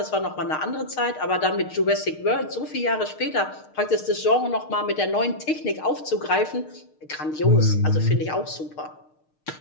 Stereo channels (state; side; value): late; right; 6.5 ms